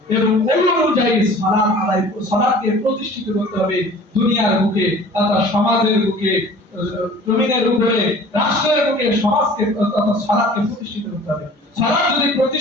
এবং ওই অনুযায়ী সালাতকে প্রতিষ্ঠিত করতে হবে দুনিয়ার বুকে, তথা সমাজের বুকে, জমিনের উপরে, রাষ্ট্রের বুকে সমাজকে তথা সালাতকে প্রতিষ্ঠিত করতে হবে। সালাত যদি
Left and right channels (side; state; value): both; normal; correlation 0.46